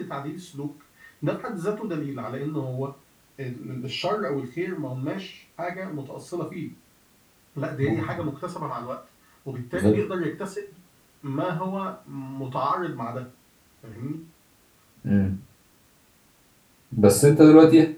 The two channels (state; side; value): identical; both; correlation 1.00